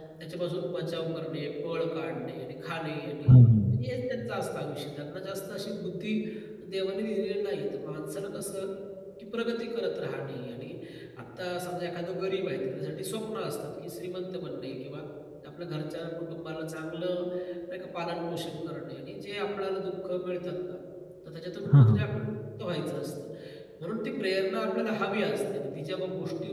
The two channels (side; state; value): both; identical; correlation 1.00